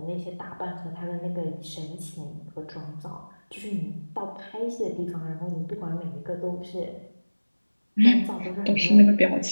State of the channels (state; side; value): inverted; both; correlation -1.00